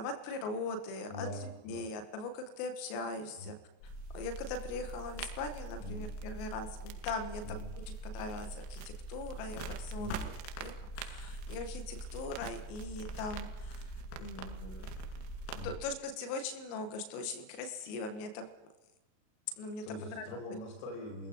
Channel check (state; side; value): late; right; 37 ms